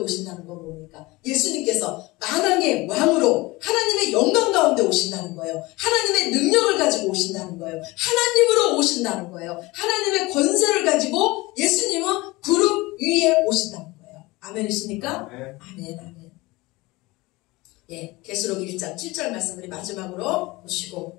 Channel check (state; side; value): quieter; right; 21.8 dB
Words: 건 뭡니까? 예수님께서 만왕의 왕으로 하나님의 영광 가운데 오신다는 거예요. 하나님의 능력을 가지고 오신다는 거예요. 하나님으로 오신다는 거예요. 하나님의 권세를 가지고 예수님은 구름 위에 오신다는 거예요. 아멘이십니까? 아멘, 아멘. 예, 계시록 1장 7절 말씀 우리 마지막으로